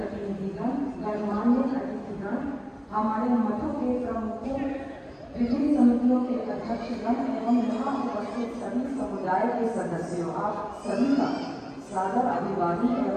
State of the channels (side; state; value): both; identical; correlation 1.00